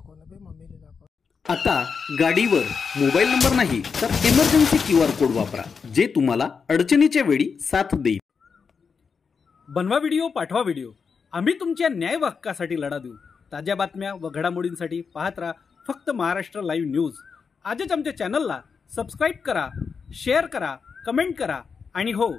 ना बे, मम्मीने दाखव. आता गाडीवर मोबाईल नंबर नाही तर इमर्जन्सी QR कोड वापरा, जे तुम्हाला अडचणीच्या वेळी साथ देईल. बनवा व्हिडिओ, पाठवा व्हिडिओ. आम्ही तुमच्या न्याय हक्कासाठी लढा देऊ. ताज्या बातम्या व घडामोडींसाठी पाहत राहा फक्त महाराष्ट्र लाईव्ह न्यूज. आजच आमच्या चॅनलला सबस्क्राईब करा, शेअर करा, कमेंट करा आणि हो,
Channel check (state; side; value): quieter; right; 5.7 dB